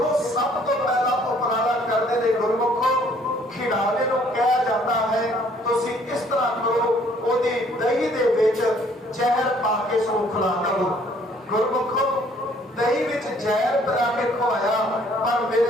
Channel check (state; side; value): normal; both; correlation 0.61